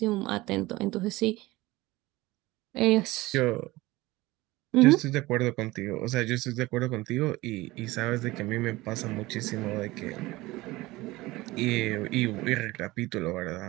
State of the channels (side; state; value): left; quieter; 19.6 dB